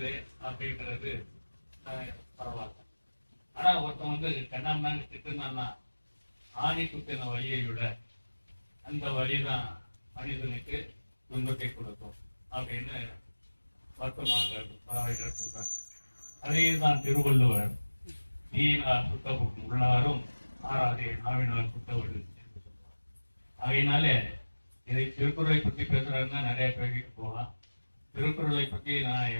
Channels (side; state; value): both; inverted; correlation -1.00